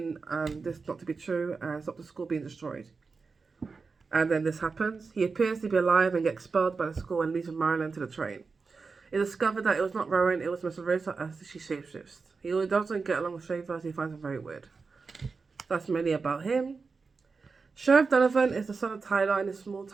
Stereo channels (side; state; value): left; quieter; 4.6 dB